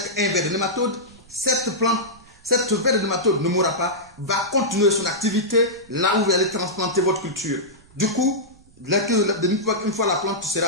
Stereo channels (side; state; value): right; noise; rumble, 27 dB below the sound